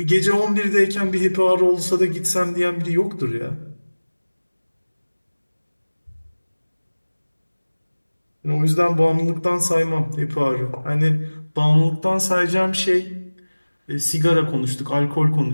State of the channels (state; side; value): inverted; both; correlation -1.00